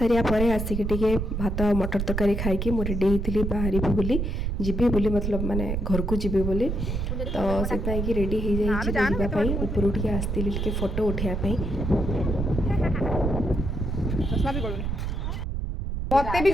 पर आसिक टे भात मटर तरकारी खाई मु रेडी होती बाहर बोली जीवी बोली मतलब माने घर को जीवी बोली तो से रेडी हो जावाई ऊपर उठे आसती फोटो उठाई मते भी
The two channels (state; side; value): noise; right; rumble, 2 dB below the sound